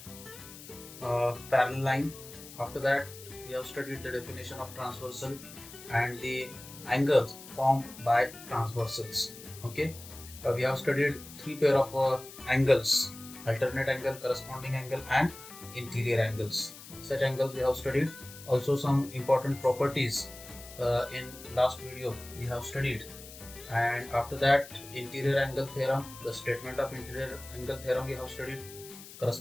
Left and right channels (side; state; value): left; noise; hiss, 16 dB below the sound